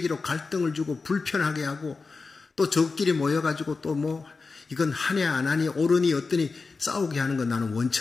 갈등을 주고 불편하게 하고 또 저끼리 모여가지고 또 이건 하냐 안 하니 옳으니 어떠니 싸우게 하는 건 나는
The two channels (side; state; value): right; quieter; 4.3 dB